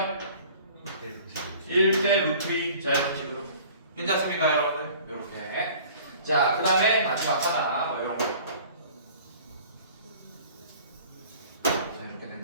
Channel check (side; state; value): both; inverted; correlation -0.47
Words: 1대 루트 2. 자, 이런 식으로. 괜찮습니까, 여러분들? 이렇게. 자, 그 다음에 마지막 하나, 뭐 이런 거. 자, 이렇게